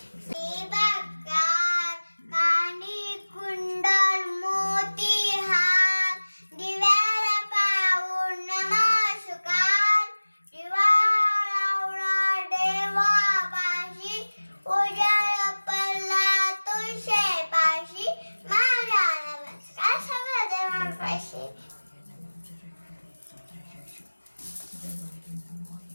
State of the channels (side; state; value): both; inverted; correlation -1.00